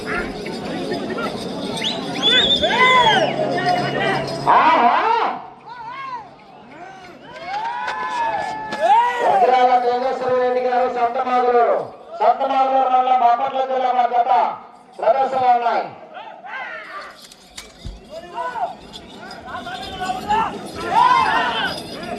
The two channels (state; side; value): identical; both; correlation 1.00